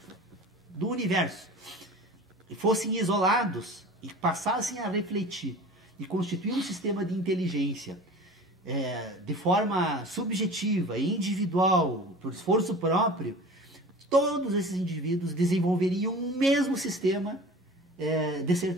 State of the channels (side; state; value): both; normal; correlation 0.39